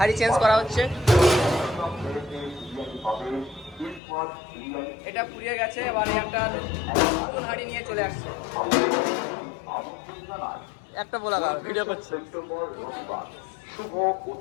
চেঞ্জ করা হচ্ছে। এটা ফুরিয়ে গেছে, এবার একটা নতুন হাঁড়ি নিয়ে চলে আসছে। একটা বলা ভিডিও করছে,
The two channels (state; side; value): drops out; right; at 4.0 s